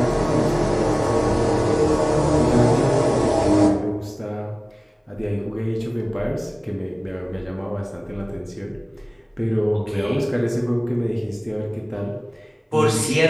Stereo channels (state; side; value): identical; both; correlation 1.00